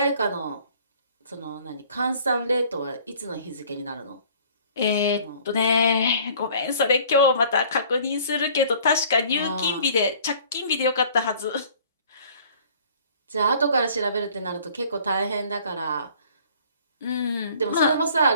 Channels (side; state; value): both; inverted; correlation -0.53